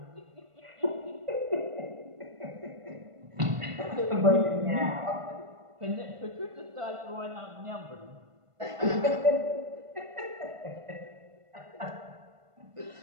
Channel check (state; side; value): late; left; 1.5 ms